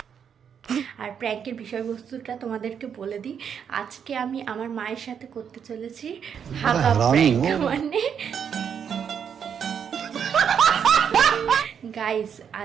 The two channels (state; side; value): quieter; left; 7.7 dB